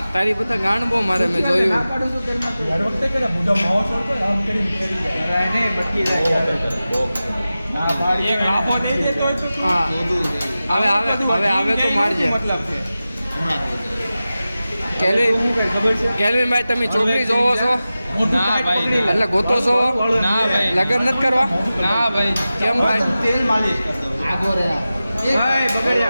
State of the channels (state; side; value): inverted; both; correlation -0.95